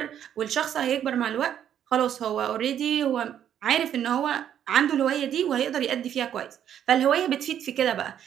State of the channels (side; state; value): left; quieter; 9.8 dB